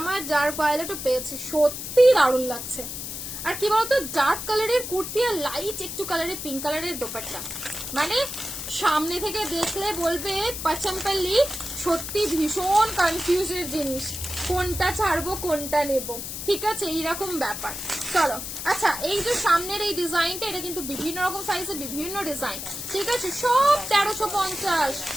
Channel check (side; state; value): left; noise; hiss, 7 dB below the sound